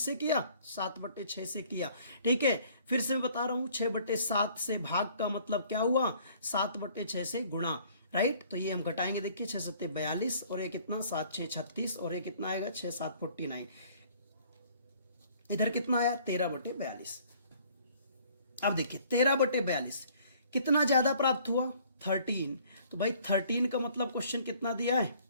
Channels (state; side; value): inverted; both; correlation -0.57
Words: किया 7/6 से किया। ठीक है, फिर से मैं बता रहा हूं 6/7 से भाग का मतलब क्या हुआ 7/6 से गुणा, राइट। तो ये हम घटाएंगे, देखिए 6 7 42, और ये कितना 7 6 36, और ये कितना आएगा 6 7 49, इधर कितना आया 13/42। अब देखिए 13/42 कितना ज्यादा प्राप्त हुआ 13, तो भाई 13 का मतलब क्वेश्चन कितना दिया है